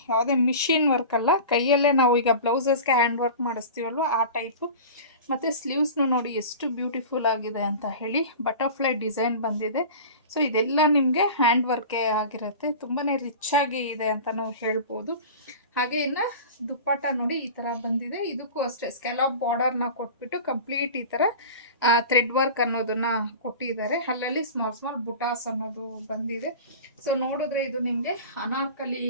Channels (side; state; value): both; inverted; correlation -0.35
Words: ಯಾವುದೇ ಮಿಷಿನ್ ವರ್ಕ್ ಅಲ್ಲ. ಕೈಯಲ್ಲೇ ನಾವು ಈಗ ಬ್ಲೌಸಸ್ಗೆ ಹ್ಯಾಂಡ್ ವರ್ಕ್ ಮಾಡಿಸ್ತೀವಲ್ವ ಆ ಟೈಪು. ಮತ್ತು ಸ್ಲೀವ್ಸ್ನು ನೋಡಿ ಎಷ್ಟು ಬ್ಯೂಟಿಫುಲ್ ಆಗಿದೆ ಅಂತ ಹೇಳಿ. ಬಟರ್ಫ್ಲೈ ಡಿಸೈನ್ ಬಂದಿದೆ. ಸೊ ಇದೆಲ್ಲ ನಿಮಗೆ ಹ್ಯಾಂಡ್ ವರ್ಕೇ ಆಗಿರುತ್ತೆ. ತುಂಬಾ ರಿಚ್ ಆಗಿ ಇದೆ ಅಂತ ನಾವು ಹೇಳ್ಬೋದು. ಹಾಗೆ ಇನ್ನು ದುಪ್ಪಟ್ಟ ನೋಡಿ ಈ ಥರ ಬಂದಿದೆ. ಇದಕ್ಕೂ ಅಷ್ಟೇ ಸ್ಕ್ಯಾಲಪ್ ಬಾರ್ಡರ್ನ ಕೊಟ್ಬಿಟ್ಟು ಕಂಪ್ಲೀಟ್ ಈ ಥರ ಥ್ರೆಡ್ ವರ್ಕ್ ಅನ್ನೋದನ್ನ ಕೊಟ್ಟಿದ್ದಾರೆ. ಅಲ್ಲಲ್ಲಿ ಸ್ಮಾಲ್ ಸ್ಮಾಲ್ ಬುಟಾಸ್ ಅನ್ನೋದು ಬಂದಿದೆ. ಸೊ ನೋಡಿದ್ರೆ ಇದು ನಿಮಗೆ ಅನಾರ್ಕಲಿ